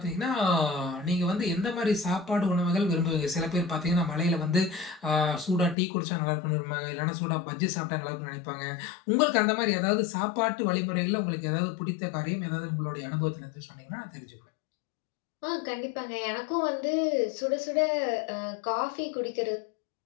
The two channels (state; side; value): drops out; right; at 5.8 s